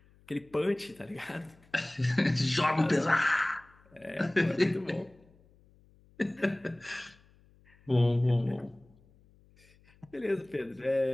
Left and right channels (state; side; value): noise; left; hum, 29 dB below the sound